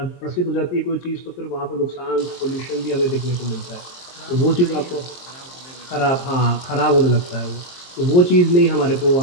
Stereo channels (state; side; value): late; right; 23 ms